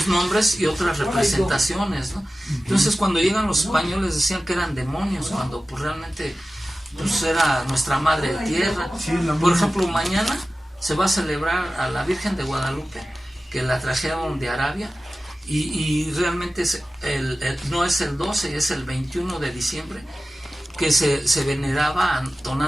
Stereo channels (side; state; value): both; normal; correlation 0.95